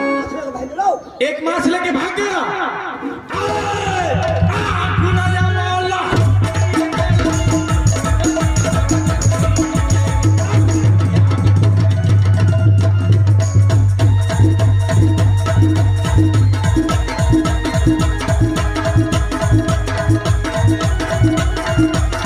एक मास लेके भाग गया।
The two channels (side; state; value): both; identical; correlation 1.00